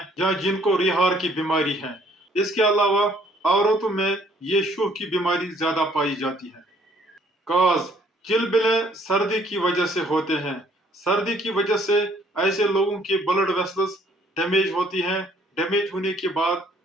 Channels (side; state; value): both; normal; correlation 0.62